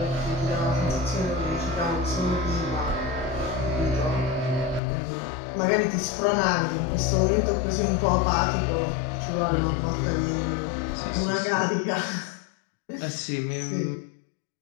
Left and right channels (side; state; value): right; drops out; at 4.8 s